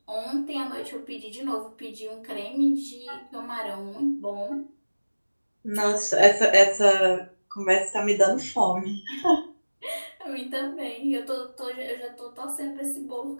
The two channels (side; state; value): both; inverted; correlation -1.00